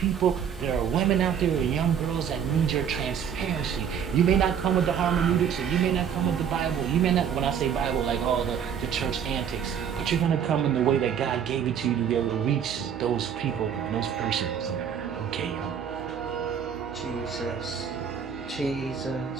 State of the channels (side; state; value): left; quieter; 8.1 dB